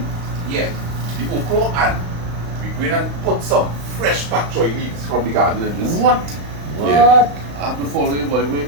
Yeah, the okra, and we go in and put some fresh pak choy leaves from the garden in this. What? Yeah. I have to follow you, boy. Wait.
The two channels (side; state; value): left; late; 35 ms